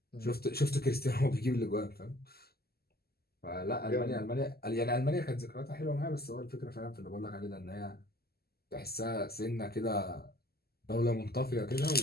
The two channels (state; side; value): late; right; 0.46 ms